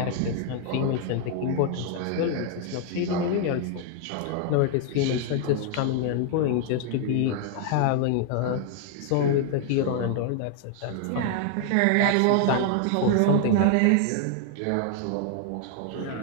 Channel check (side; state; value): both; different; correlation 0.00